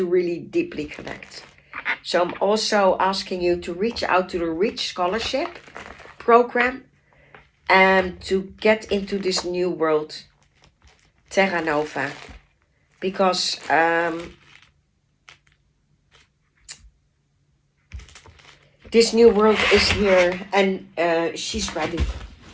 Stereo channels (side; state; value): both; identical; correlation 1.00